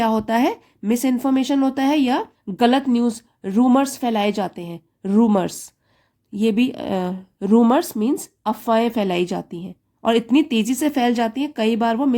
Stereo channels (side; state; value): both; identical; correlation 1.00